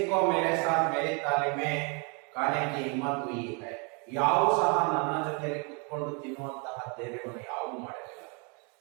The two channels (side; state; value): left; quieter; 34.4 dB